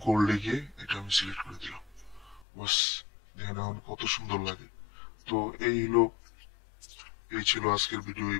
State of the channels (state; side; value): drops out; right; at 2.5 s